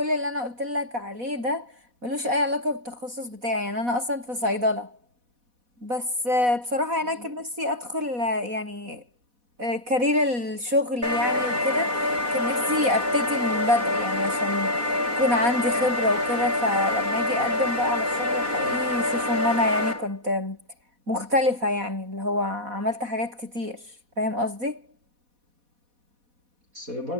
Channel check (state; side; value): late; left; 4.1 ms